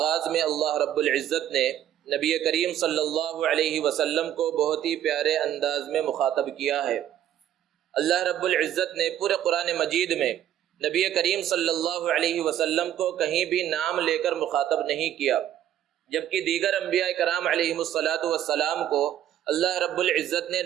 میں اللہ رب العزت نے نبی کریم صلی اللہ علیہ وسلم کو بہت ہی پیارے انداز میں مخاطب کیا ہے۔ اللہ رب العزت نے پورے قرآن مجید میں نبی کریم صلی اللہ علیہ وسلم کو کہیں بھی نام لے کر مخاطب نہیں کیا، جبکہ دیگر انبیاء کرام علیہم الصلاۃ والسلام کو اللہ رب العزت نے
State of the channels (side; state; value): left; quieter; 11.2 dB